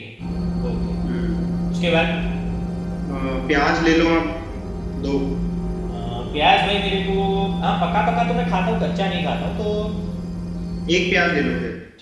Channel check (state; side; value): identical; both; correlation 1.00